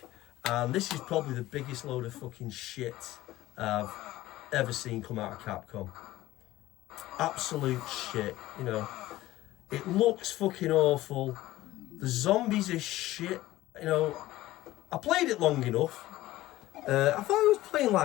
And this is probably the biggest load of fucking shit I've ever seen come out of Capcom. Absolute shit, you know. It looks fucking awful. The zombies are shit, you know. I played it long enough. I thought I was playing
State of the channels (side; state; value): right; quieter; 16.4 dB